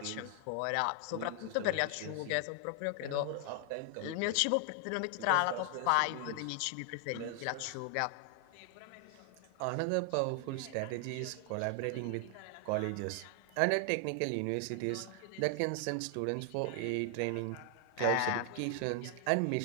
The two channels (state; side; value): different; both; correlation 0.00